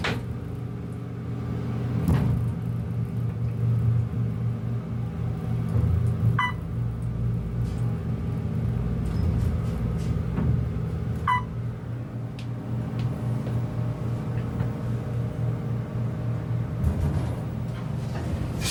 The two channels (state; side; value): identical; both; correlation 1.00